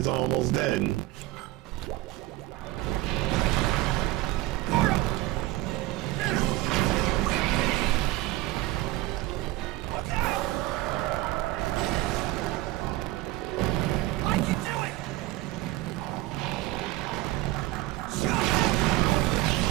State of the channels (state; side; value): quieter; left; 17.4 dB